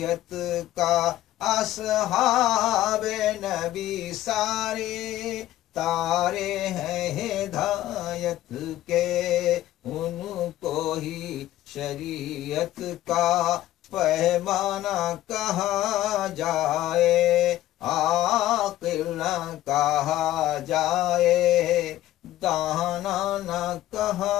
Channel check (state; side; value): quieter; right; 14.3 dB